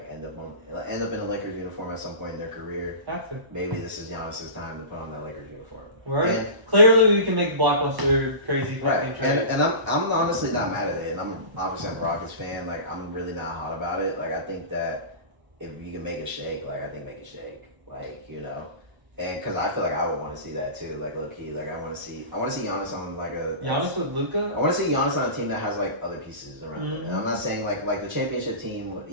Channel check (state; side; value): late; left; 1.0 ms